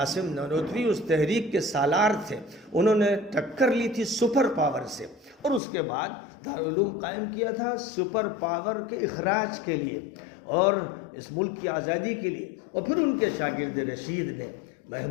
نانوتوی اس تحریک کے سالار تھے. انہوں نے ٹکر لی تھی سپر پاور سے اور اس کے بعد دارالعلوم قائم کیا تھا سپر پاور کے اخراج کے لیے اور اس ملک کی آزادی کے لیے. اور پھر ان کے شاگرد رشید نے،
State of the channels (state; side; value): drops out; right; at 5.6 s